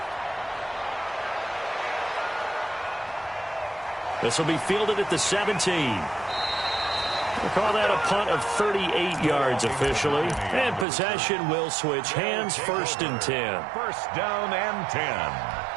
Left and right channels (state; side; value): drops out; left; at 10.9 s